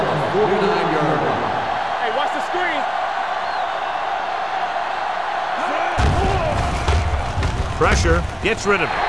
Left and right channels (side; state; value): both; identical; correlation 1.00